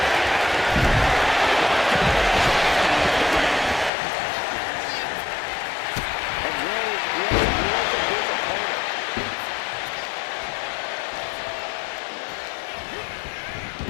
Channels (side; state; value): right; drops out; at 3.9 s